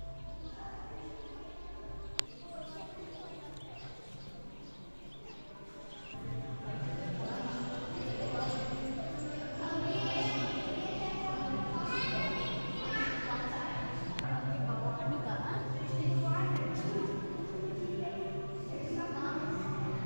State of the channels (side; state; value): both; inverted; correlation -1.00